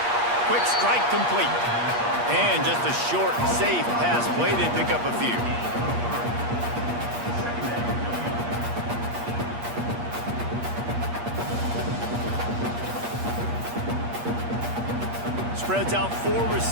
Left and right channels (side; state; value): left; late; 8.4 ms